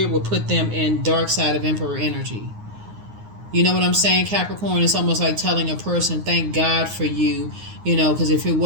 will put them in dark side of Emperor energy. You know what I'm saying, Capricorn? It's almost like telling a person, "Thank God for you," because if it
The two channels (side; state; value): left; late; 9.6 ms